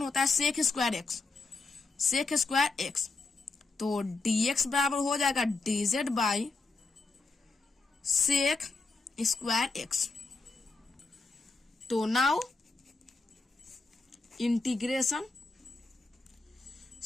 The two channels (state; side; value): quieter; right; 3.8 dB